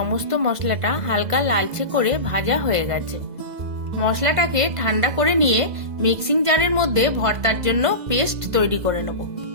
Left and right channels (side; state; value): left; late; 2.0 ms